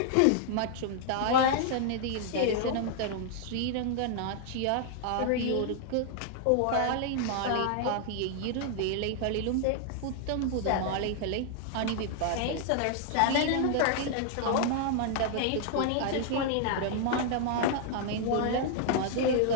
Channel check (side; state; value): both; different; correlation -0.01